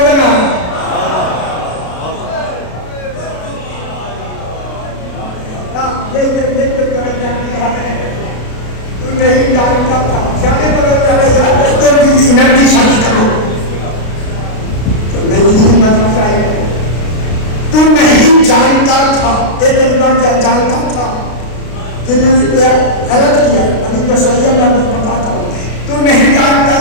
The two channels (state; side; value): late; right; 33 ms